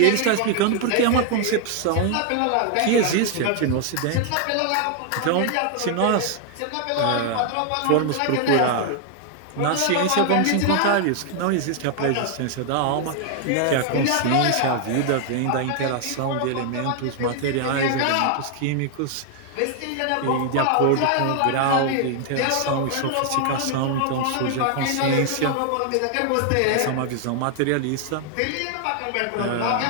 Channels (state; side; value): different; both; correlation 0.00